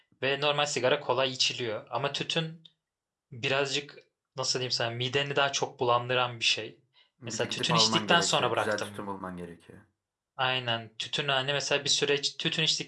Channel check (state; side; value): identical; both; correlation 1.00